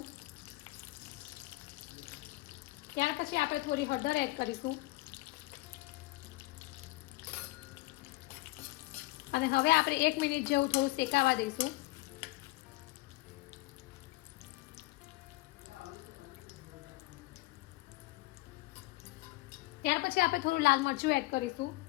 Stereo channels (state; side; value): quieter; right; 20.2 dB